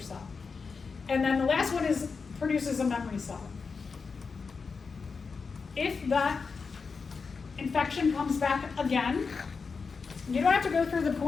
And then the last one is produces a memory cell. If that infection comes back again, you don't have to go through the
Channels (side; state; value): right; quieter; 5.0 dB